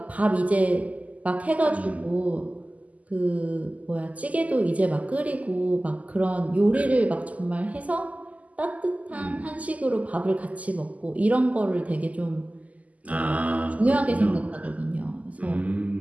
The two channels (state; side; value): late; left; 0.073 ms